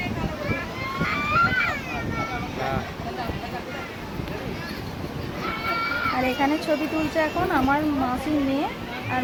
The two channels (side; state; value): both; identical; correlation 1.00